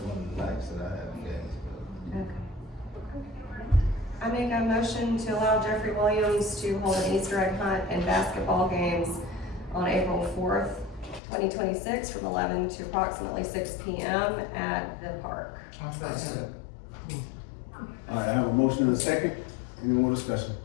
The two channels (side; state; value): right; drops out; at 11.2 s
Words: one of the nights that I had in Gainesville. Okay. I mean, make a motion to allow Jeffrey Williams to hold an Easter egg hunt and basketball games on April 4th, 2026, from 11 to approximately 6 p.m. at the park. I'll second. All right, I have a motion and a second. Any more discussion?